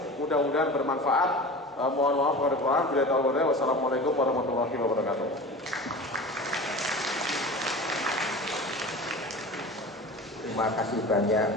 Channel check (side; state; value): both; normal; correlation 0.35